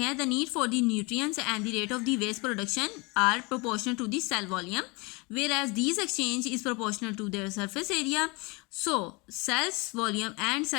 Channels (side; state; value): right; quieter; 27.7 dB